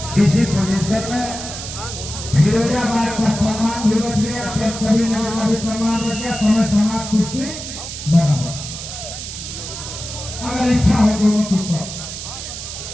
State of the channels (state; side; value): noise; right; hiss, 8 dB below the sound